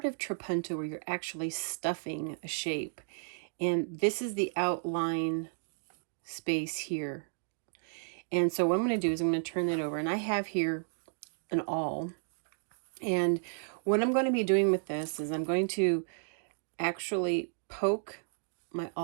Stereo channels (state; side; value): silent; left; digital silence